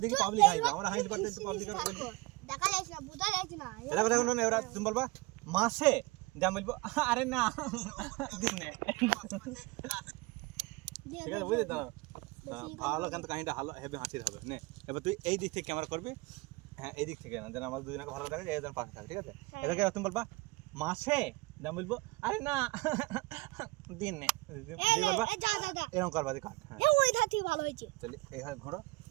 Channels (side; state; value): left; quieter; 23.6 dB